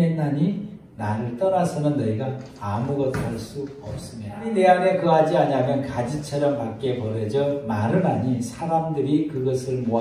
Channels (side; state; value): both; identical; correlation 1.00